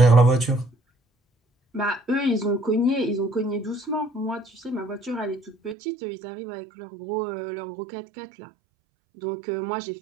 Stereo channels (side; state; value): left; drops out; at 5.8 s